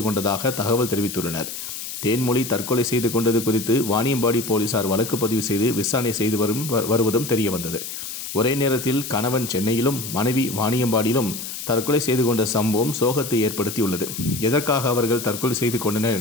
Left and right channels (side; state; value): left; noise; hiss, 8 dB below the sound